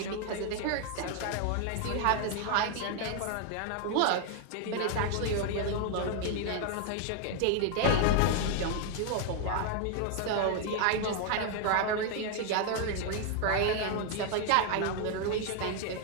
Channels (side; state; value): both; different; correlation 0.00